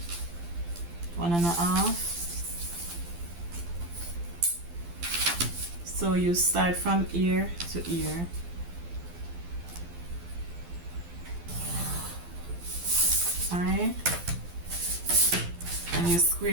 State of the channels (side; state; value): left; late; 12 ms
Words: 1.5. So you start from ear to ear. Alright, and you